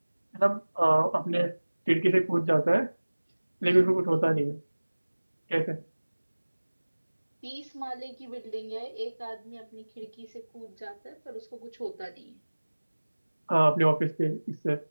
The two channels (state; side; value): inverted; both; correlation -1.00